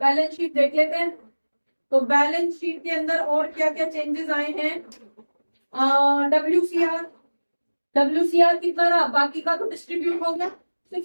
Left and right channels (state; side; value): inverted; both; correlation -1.00